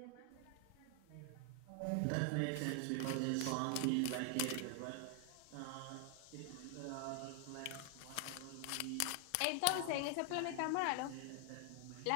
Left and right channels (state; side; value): different; both; correlation 0.00